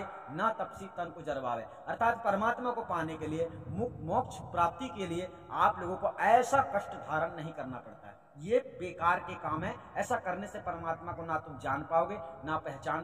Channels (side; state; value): both; identical; correlation 1.00